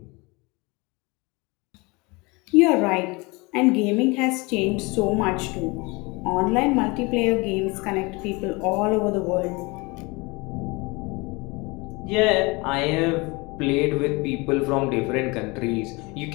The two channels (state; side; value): quieter; right; 26.0 dB